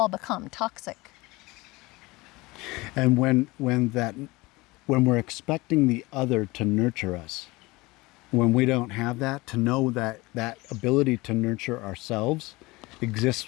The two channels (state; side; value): quieter; right; 22.1 dB